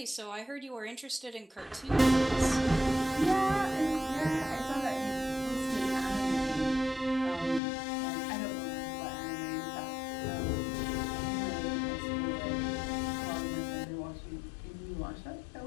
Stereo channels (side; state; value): right; drops out; at 7.6 s